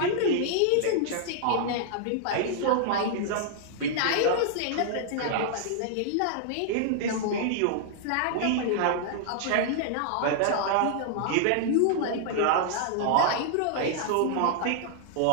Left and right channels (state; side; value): different; both; correlation -0.01